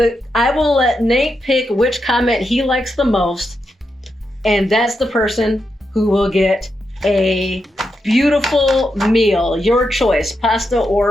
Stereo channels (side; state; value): both; normal; correlation 0.85